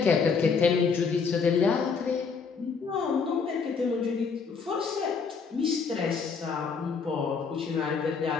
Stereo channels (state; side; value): quieter; right; 5.4 dB